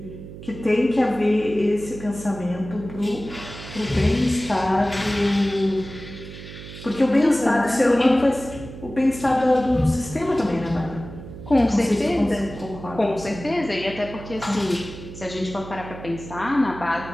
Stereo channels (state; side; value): noise; right; hum, 13 dB below the sound